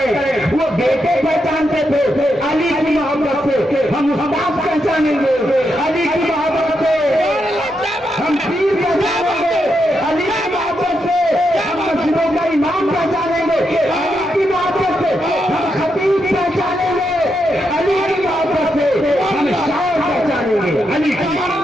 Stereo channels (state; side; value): normal; both; correlation 0.83